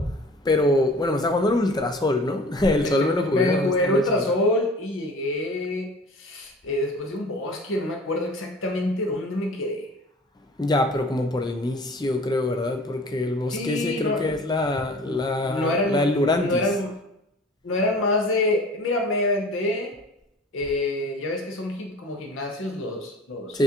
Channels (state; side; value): normal; both; correlation 0.44